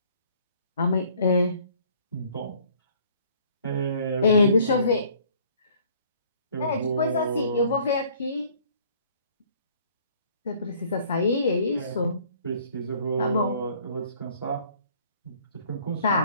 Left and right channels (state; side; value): inverted; both; correlation -0.58